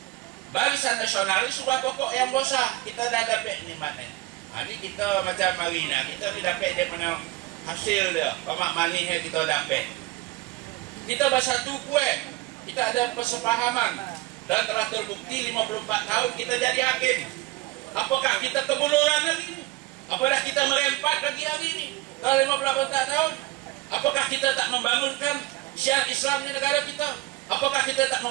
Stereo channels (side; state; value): left; quieter; 20.1 dB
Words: barisan nasional ini sebuah pokok yang besar. Kita dah dapat nikmatnya. Ini kita macam Marina, kita ni dapat dia punya hasil dia, pamak manis yang kita dapat. Kita bersatu kuat, kita ada persepahaman dan telah terbukti 54 tahun kita jadi hakim. Apakah kita kebuluran lagi? Apakah kita merempat lagi hari ini? Dalam 54 tahun, apakah kita tak membangunkan syiar Islam di negara kita? Apakah kita tak